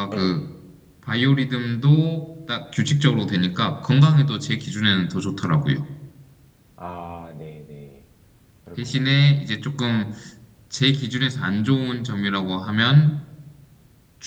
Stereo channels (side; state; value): both; identical; correlation 1.00